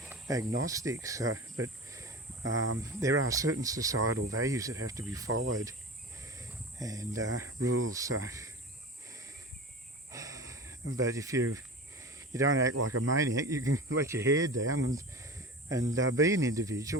agnostic. So, but there are certain societal values that have to be followed, and rules. So, but if you don't act like a maniac, you can let your hair down and be an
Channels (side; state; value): both; normal; correlation 0.32